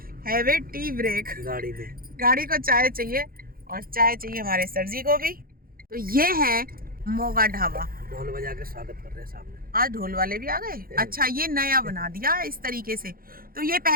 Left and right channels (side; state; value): left; late; 0.42 ms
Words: हैव ए टी ब्रेक। गाड़ी में गाड़ी को चाय चाहिए, और चाय चाहिए हमारे सर जी को भी। तो ये है मोगा ढाबा। ढोल बजा के स्वागत कर रहे हैं सामने। आज ढोल वाले भी आ गए। अच्छा, ये नया बना दिया है इस तरीके से। तो ये